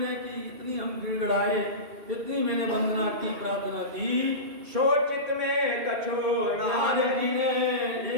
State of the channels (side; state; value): left; late; 2.5 ms